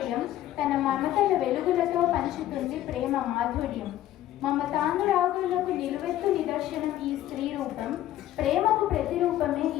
తన మమతల వెలుగులతో పంచుతుంది ప్రేమ మాధుర్యం. మమతానురాగులకు నిలువెత్తు నిదర్శనం ఈ స్త్రీ రూపం, ప్రేమకు ప్రతిరూపమే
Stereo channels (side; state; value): right; quieter; 13.3 dB